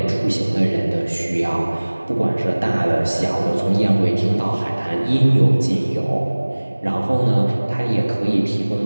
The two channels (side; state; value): both; inverted; correlation -1.00